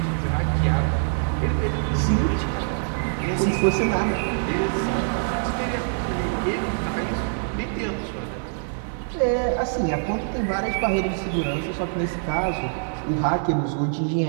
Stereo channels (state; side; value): silent; left; digital silence